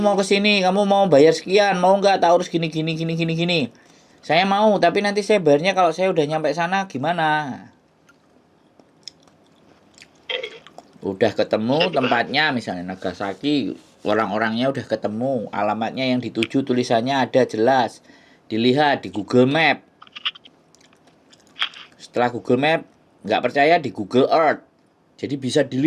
ke sini, kamu mau bayar sekian, mau nggak? Tak urus gini. Saya mau, tapi nanti saya bayarnya kalau saya udah nyampe sana gimana? Udah ketemu tempatnya, misalnya Nagasaki, orang-orangnya udah ketemu, alamatnya yang dituju tulisannya ada jelas, dilihat di Google Map. Setelah Google Map, nggak percaya di Google Earth. Jadi bisa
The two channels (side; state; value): both; identical; correlation 1.00